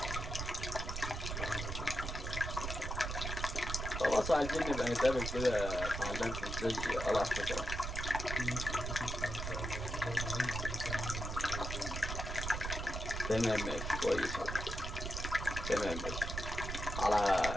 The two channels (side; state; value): right; noise; rumble, 4 dB below the sound